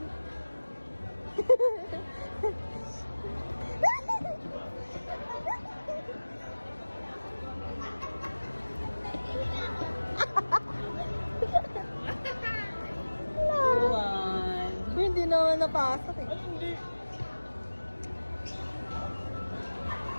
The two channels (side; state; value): both; inverted; correlation -1.00